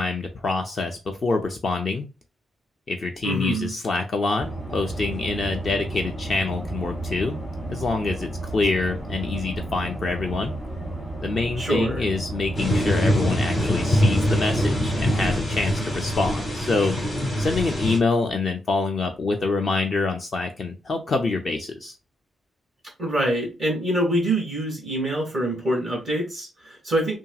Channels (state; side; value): normal; both; correlation 0.80